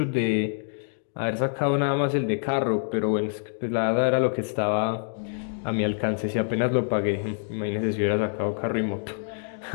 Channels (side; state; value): right; silent; digital silence